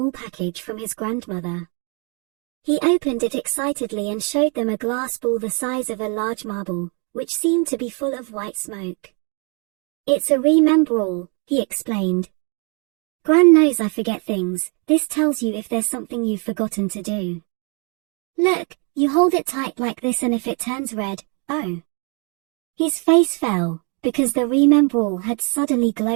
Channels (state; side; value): quieter; left; 35.9 dB